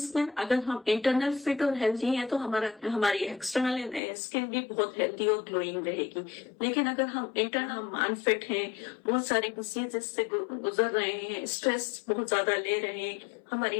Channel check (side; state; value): right; drops out; at 4.0 s